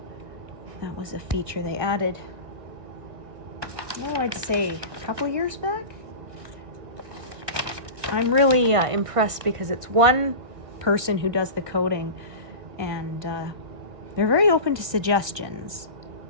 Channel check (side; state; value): left; late; 1.6 ms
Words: That was a feature they added, I'd say a couple years back. I'm really impressed because it's one person who does the coding, and they're very open to suggestions